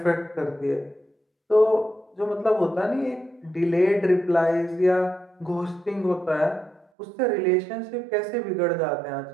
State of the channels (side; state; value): left; drops out; at 6.9 s